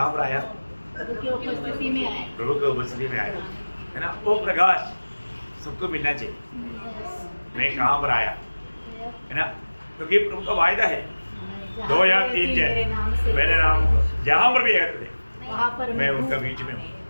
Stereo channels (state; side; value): inverted; both; correlation -1.00